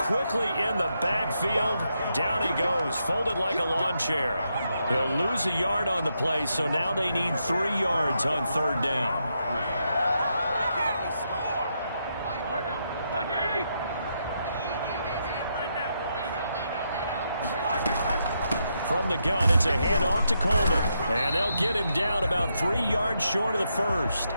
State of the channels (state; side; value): inverted; both; correlation -0.81